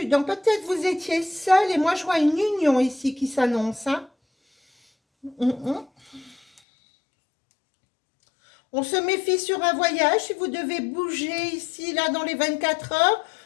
Donc peut-être vous étiez seul et moi je vois une union ici qui s'annonce. Hein. On se méfie sur un voyage. Si vous devez bouger ici, là, dans les 24 heures,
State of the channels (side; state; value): right; drops out; at 6.6 s